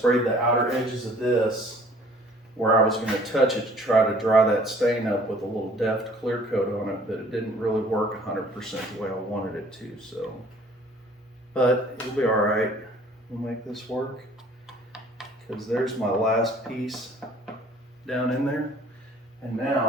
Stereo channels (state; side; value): normal; both; correlation 0.54